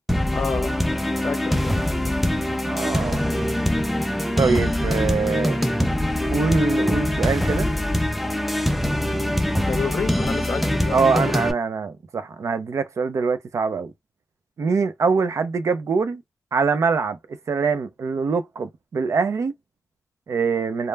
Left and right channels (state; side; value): normal; both; correlation 0.86